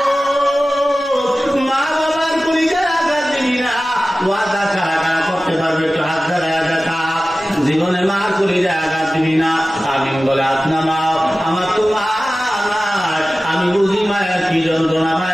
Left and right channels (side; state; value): both; normal; correlation 0.96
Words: মা বাবার পরিচয় আঘাত দিবি না ওয়াদা ছাড়া করতে পারবে একটু হাত ধরায় দেখা জীবনে মার পরিচয় আঘাত দিবি না আমি বলে আপনা মা আমার তো মা আমি বুঝি মায়ের কি যন্ত্রণা